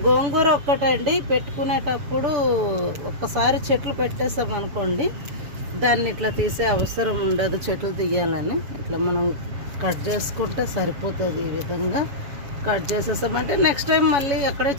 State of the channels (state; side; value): late; left; 7.0 ms